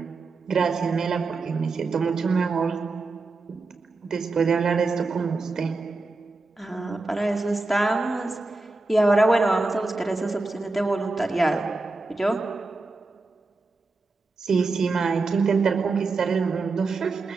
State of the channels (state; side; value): quieter; left; 3.6 dB